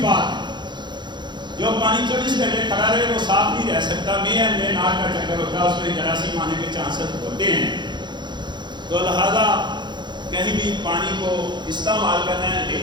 بات جو پانی 24 گھنٹے کھڑا رہے وہ صاف نہیں رہ سکتا. میں ناک کا چکر ہوتا ہے, اس میں جراثیم آنے کے چانسز ہوتے ہیں. تو لہذا کہیں بھی پانی کو استعمال کرنا ہے,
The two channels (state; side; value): late; left; 0.22 ms